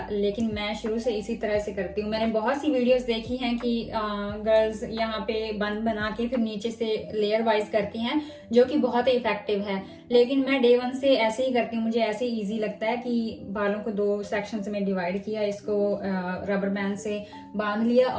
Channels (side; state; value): both; identical; correlation 1.00